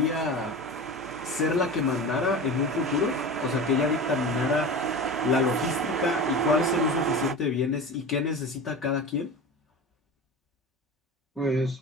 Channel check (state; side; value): normal; both; correlation 0.31